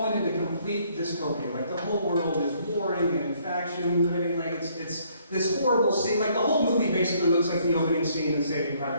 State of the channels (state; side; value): inverted; both; correlation -0.66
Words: into complete dystopia. Like the whole world is warring and faction. Like it's this horrible scene. Like the whole movie basically looks like the opening scene in Saving